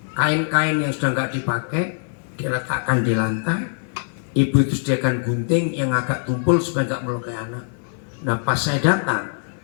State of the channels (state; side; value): silent; right; 64 dB below the other